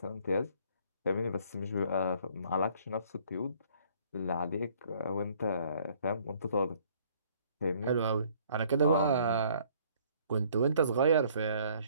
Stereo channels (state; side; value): inverted; both; correlation -0.60